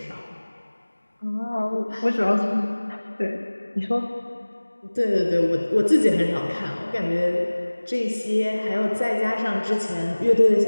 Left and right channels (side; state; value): both; inverted; correlation -1.00